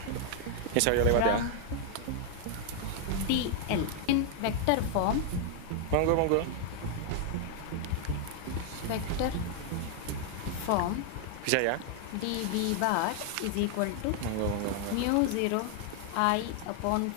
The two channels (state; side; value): different; both; correlation 0.00